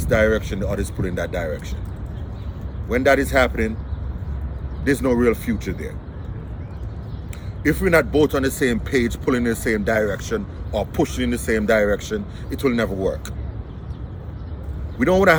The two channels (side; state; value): both; identical; correlation 1.00